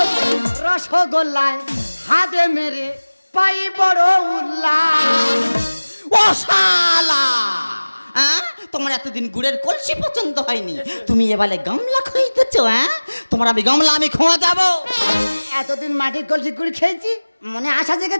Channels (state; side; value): inverted; both; correlation -1.00